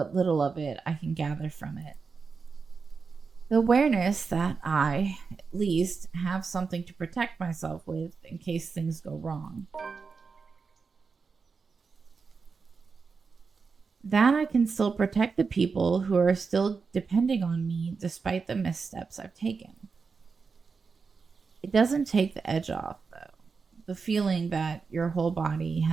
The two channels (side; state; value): left; quieter; 5.0 dB